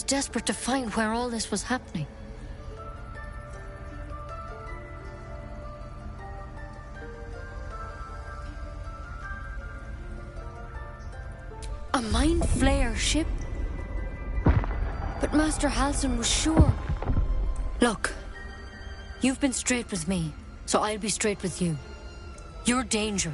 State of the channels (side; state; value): both; identical; correlation 1.00